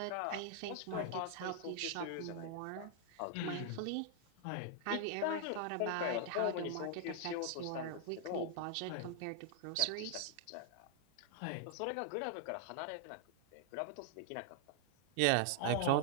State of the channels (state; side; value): different; both; correlation 0.00